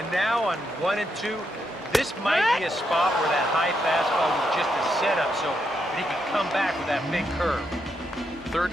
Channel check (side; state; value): both; normal; correlation 0.81